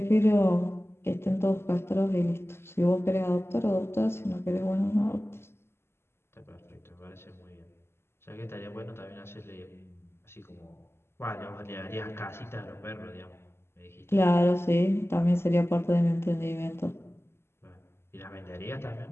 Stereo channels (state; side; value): late; right; 0.12 ms